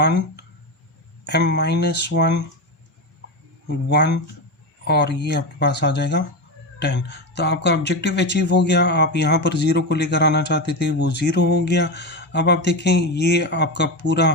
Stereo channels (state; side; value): normal; both; correlation 0.17